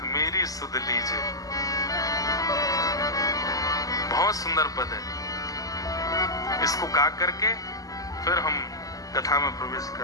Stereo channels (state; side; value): late; right; 0.17 ms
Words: मेरी सुध लीजिए। बहुत सुंदर पद है। इसको गा करके फिर हम कथा में प्रवेश